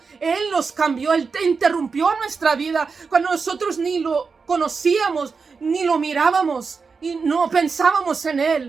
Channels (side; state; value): left; quieter; 5.0 dB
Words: Él nos cambió. Él interrumpió nuestra vida cuando nosotros ni lo conocíamos, ni lo mirábamos y no pensábamos en